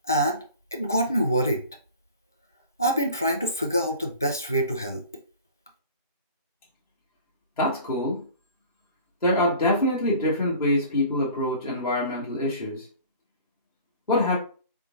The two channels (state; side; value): inverted; both; correlation -0.43